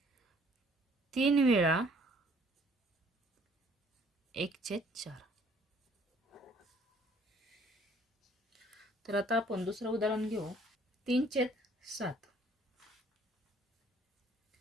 3 वेळा 1/4. तर आता आपण दुसरं उदाहरण घेऊ. 3/7.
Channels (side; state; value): both; normal; correlation 0.59